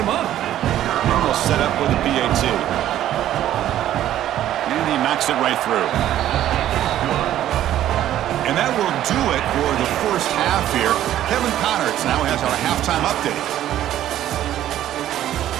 up. And they'll set up with a PAT. And he knocks it right through. And that will do it for the first half here. Kevin Connerts now has our halftime update.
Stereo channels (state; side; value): quieter; left; 12.3 dB